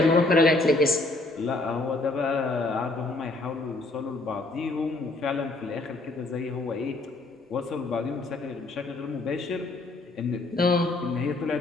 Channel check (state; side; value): quieter; right; 3.0 dB